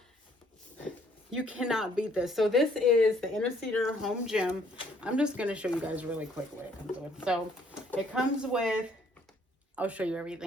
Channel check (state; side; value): normal; both; correlation 0.64